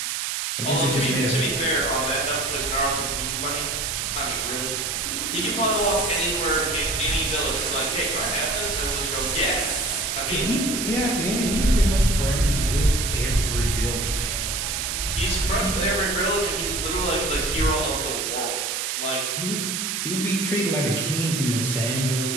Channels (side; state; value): right; noise; hiss, 1 dB below the sound